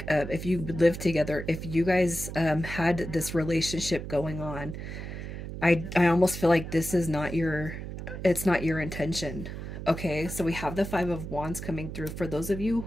if you lived together, if you guys had this relationship going on, I almost feel like this is not it's not your intention. Okay, so we have the Five of Wands coming through. For those of you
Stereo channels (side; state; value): right; noise; hum, 8 dB below the sound